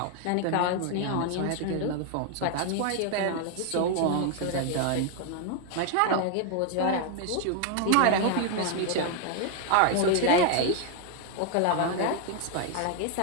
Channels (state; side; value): different; both; correlation 0.00